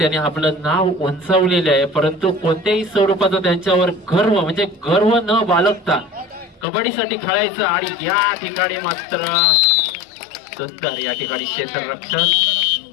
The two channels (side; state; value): right; drops out; at 6.7 s